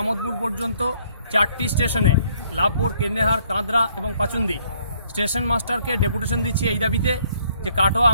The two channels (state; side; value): inverted; both; correlation -0.65